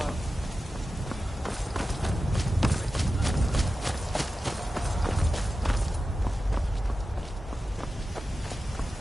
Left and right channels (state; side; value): normal; both; correlation 0.93